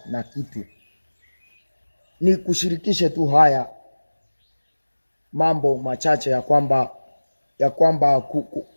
na kitu. Ni kushirikishe tu haya mambo machache ya kwamba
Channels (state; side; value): inverted; both; correlation -1.00